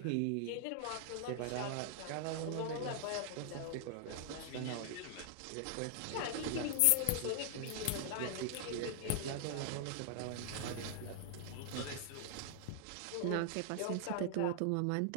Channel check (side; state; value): both; different; correlation 0.00